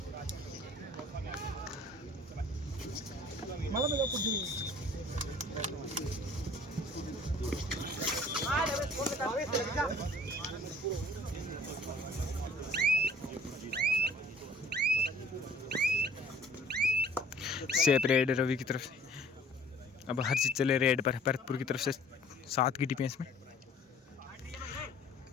सेप रेड रवि की तरफ से। अब हर चीज चले रेड पर भरतपुर की तरफ से 7 की डिफेंस में।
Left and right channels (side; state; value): both; normal; correlation 0.52